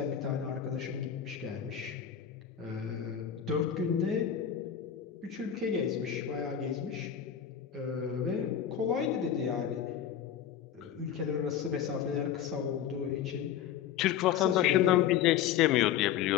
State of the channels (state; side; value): quieter; right; 9.4 dB